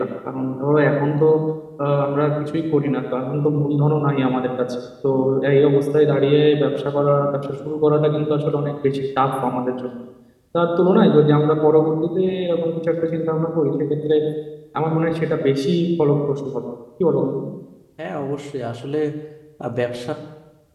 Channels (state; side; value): identical; both; correlation 1.00